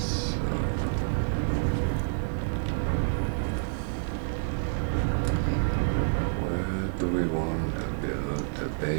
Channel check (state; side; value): silent; left; 59 dB below the other